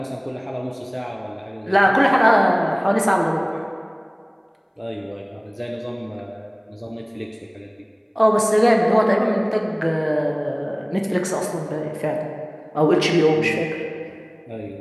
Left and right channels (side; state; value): both; identical; correlation 1.00